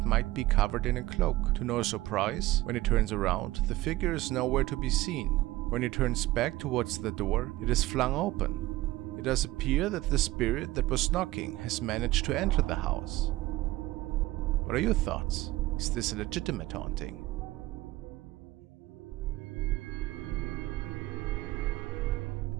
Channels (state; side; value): quieter; left; 17.5 dB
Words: might be covered in a cloak. To no surprise, when it turns around, the figure is nowhere to be seen. When it turns back towards the door, it is flung open. It does appear that the spirit that was knocking has managed to enter the house. What are your thoughts? Is this a legitimate haunting?